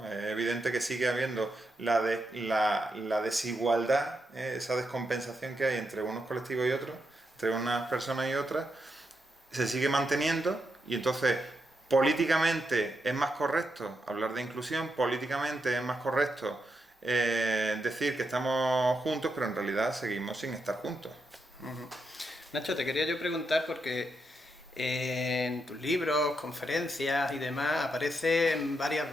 Es evidente que sigue habiendo la desigualdad, esa descompensación que hay entre unos colectivos y otros, entre unas personas y otras, se sigue manteniendo y entonces políticamente es más correcto hablar de inclusión, políticamente es más correcto decir que estamos juntos, pero en realidad seguimos sin estar juntos. Nacho, te quería yo preguntar porque en tus libros, conferencias y demás aparecen varias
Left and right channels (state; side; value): normal; both; correlation 0.83